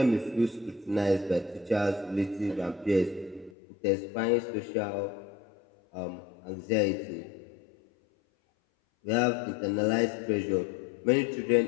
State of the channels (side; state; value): right; drops out; at 3.5 s